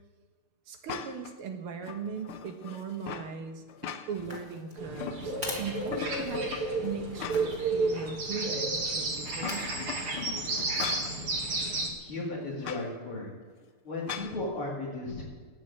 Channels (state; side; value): late; left; 6.7 ms